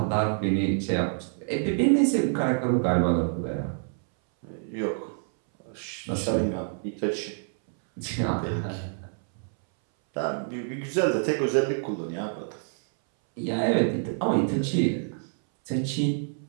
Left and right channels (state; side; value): silent; left; 60 dB below the other